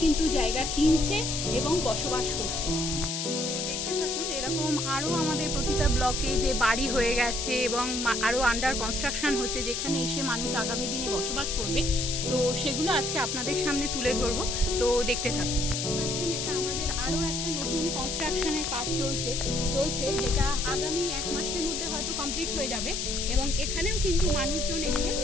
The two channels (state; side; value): noise; left; hiss, 2 dB below the sound